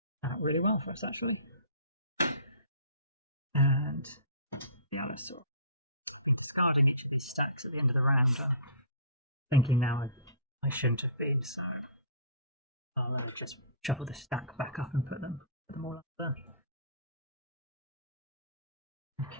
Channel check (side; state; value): both; inverted; correlation -0.40